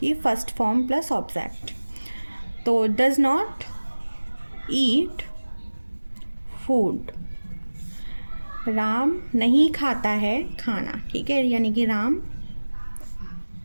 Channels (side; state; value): both; inverted; correlation -1.00